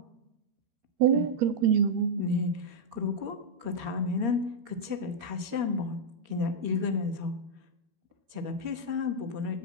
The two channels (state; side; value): late; left; 13 ms